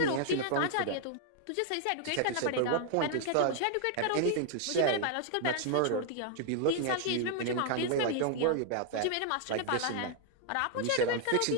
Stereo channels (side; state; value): both; different; correlation 0.00